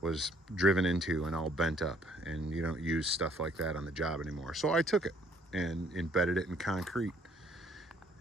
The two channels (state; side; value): normal; both; correlation 0.63